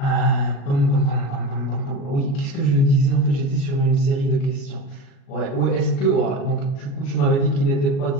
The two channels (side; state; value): right; late; 36 ms